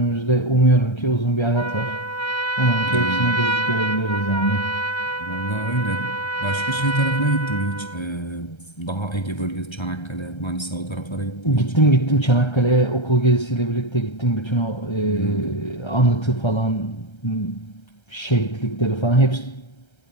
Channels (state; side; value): late; right; 1.3 ms